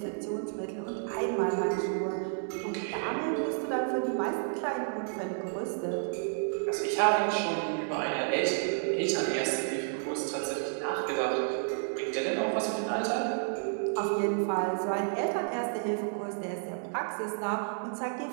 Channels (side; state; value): left; silent; digital silence